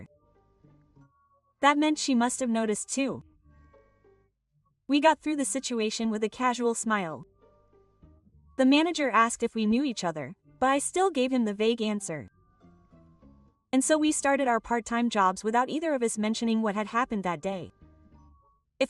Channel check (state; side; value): identical; both; correlation 1.00